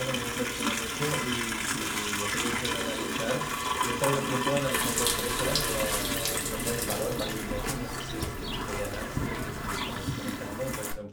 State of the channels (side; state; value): both; identical; correlation 1.00